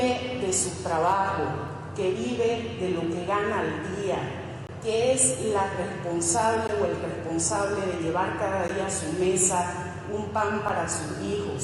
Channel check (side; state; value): both; identical; correlation 1.00